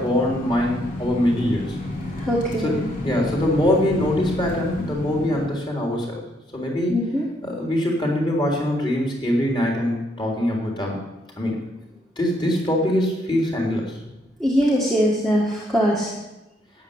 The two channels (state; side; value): normal; both; correlation 0.72